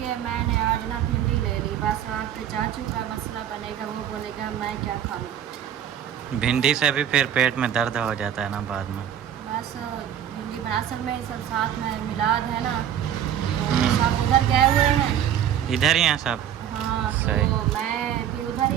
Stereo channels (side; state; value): left; quieter; 9.9 dB